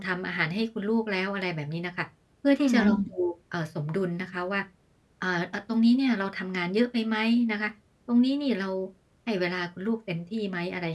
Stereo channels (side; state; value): both; identical; correlation 1.00